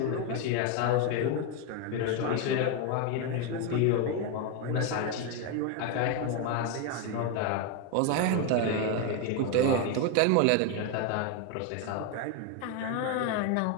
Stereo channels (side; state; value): both; different; correlation 0.02